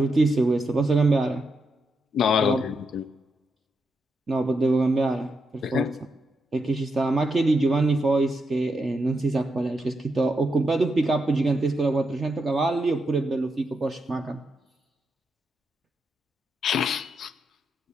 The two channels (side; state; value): both; normal; correlation 0.83